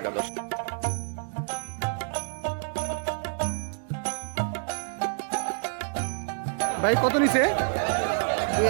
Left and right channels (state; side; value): silent; left; digital silence